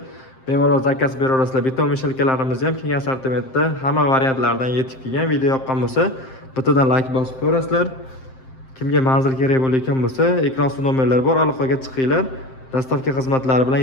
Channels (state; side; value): late; right; 7.6 ms